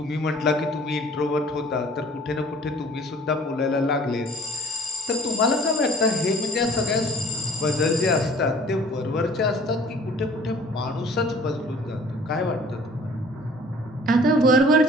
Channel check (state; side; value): normal; both; correlation 0.51